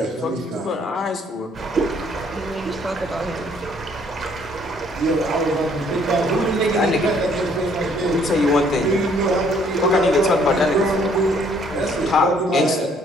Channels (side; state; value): both; normal; correlation 0.63